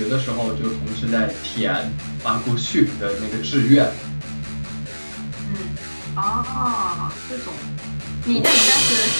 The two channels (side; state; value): both; inverted; correlation -1.00